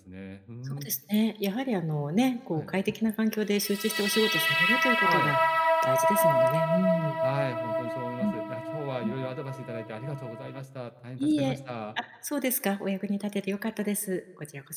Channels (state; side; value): identical; both; correlation 1.00